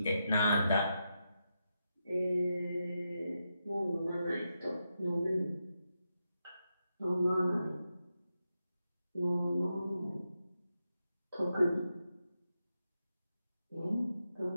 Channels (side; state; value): both; inverted; correlation -0.86